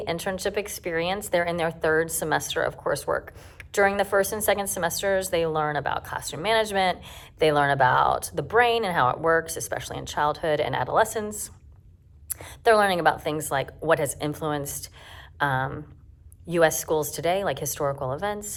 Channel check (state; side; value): identical; both; correlation 1.00